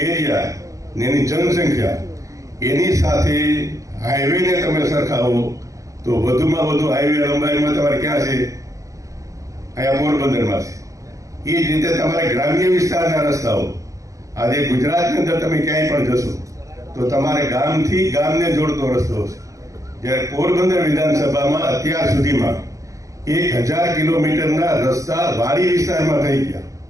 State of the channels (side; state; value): left; late; 0.16 ms